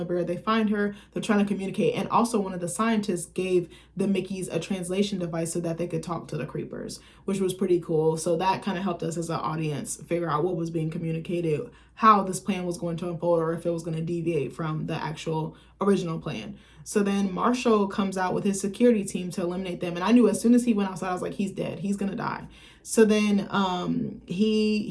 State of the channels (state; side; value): identical; both; correlation 1.00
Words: bear. They find her. They're trying to communicate. And also one of the scientists gave the Mickeys a translation device so that they could talk to the creepers, which was pretty cool. So that kind of helped us as an audience figure out what was being communicated, how this plan was going to unfold, or if it was going to deviate from the actual original plan. So then Marshall comes out with his security team to eliminate them. And I knew as soon as he went outside, I was like, he's dead. He's going to die. So then